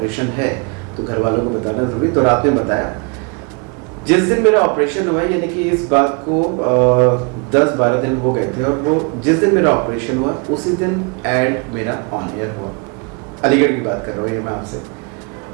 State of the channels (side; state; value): left; quieter; 33.8 dB